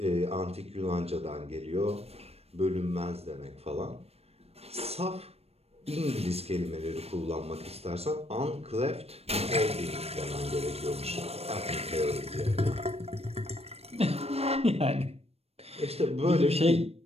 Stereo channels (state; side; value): late; left; 0.29 ms